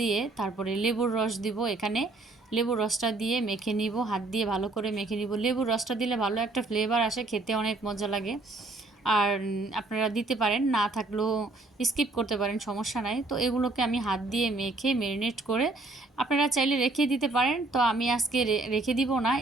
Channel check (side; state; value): left; quieter; 3.2 dB